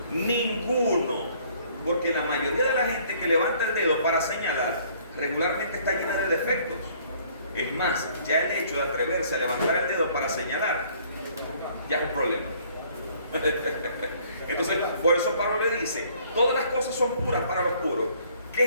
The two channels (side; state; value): both; inverted; correlation -0.59